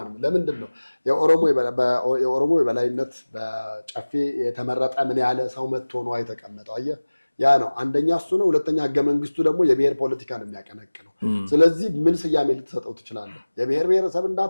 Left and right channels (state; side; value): inverted; both; correlation -1.00